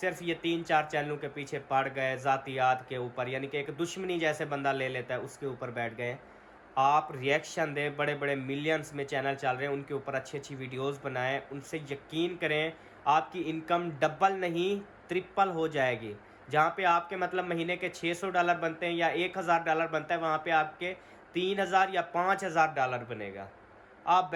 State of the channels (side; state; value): both; identical; correlation 1.00